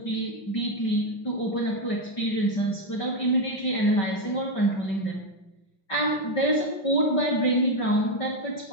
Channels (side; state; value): right; late; 5.2 ms